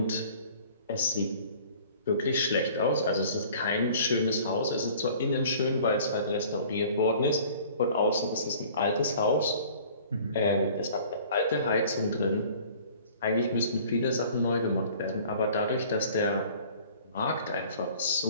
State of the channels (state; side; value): inverted; both; correlation -0.50